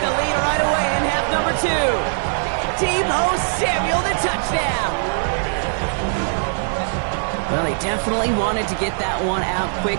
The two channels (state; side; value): silent; left; 60 dB below the other